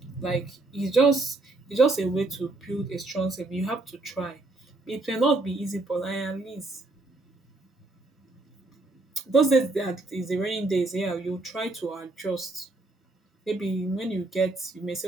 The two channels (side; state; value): left; quieter; 3.1 dB